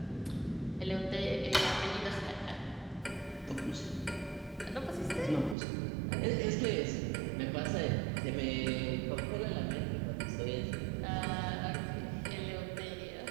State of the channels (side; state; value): left; drops out; at 5.6 s